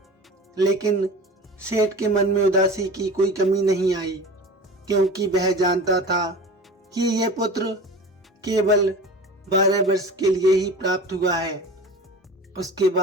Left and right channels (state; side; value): normal; both; correlation 0.36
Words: लेकिन सेठ के मन में उदासी की कोई कमी नहीं आई, क्योंकि वह जानता था कि यह पुत्र केवल 12 वर्ष के लिए ही प्राप्त हुआ है। उसके